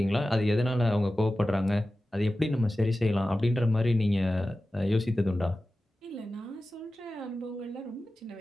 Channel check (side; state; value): both; normal; correlation 0.95